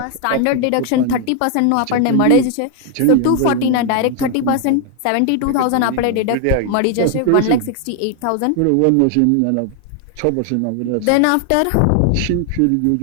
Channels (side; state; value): both; different; correlation 0.00